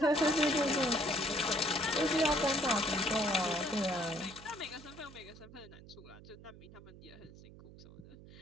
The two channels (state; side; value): noise; right; hum, 18 dB below the sound